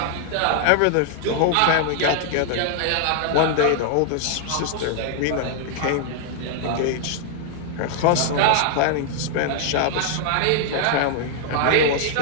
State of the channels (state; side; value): different; both; correlation 0.00